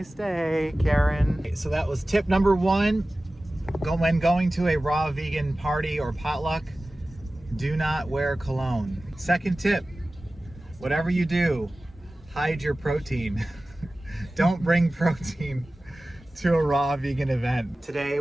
day, Karen. So that was tip number 1. When going to a raw vegan party or potluck, do not wear cologne. Second tip, whatever you do, hide your protein. Don't bring protein to a raw vegan event. Today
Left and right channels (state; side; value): normal; both; correlation 0.96